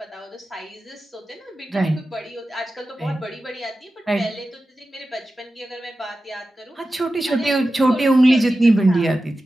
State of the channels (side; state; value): both; normal; correlation 0.93